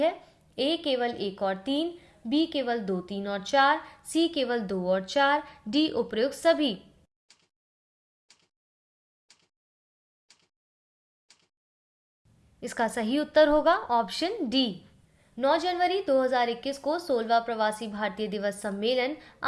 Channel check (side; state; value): both; identical; correlation 1.00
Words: A केवल 1 और 3, B केवल 2, 3 और 4, C केवल 2 और 4, D उपरोक्त सभी। इसका सही उत्तर होगा ऑप्शन डी। 9 जनवरी 2021 को 16वां प्रवासी भारतीय दिवस सम्मेलन